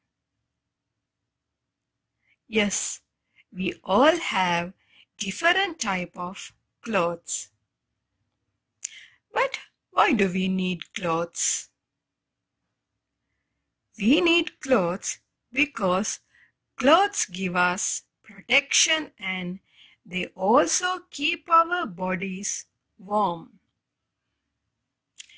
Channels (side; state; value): both; identical; correlation 1.00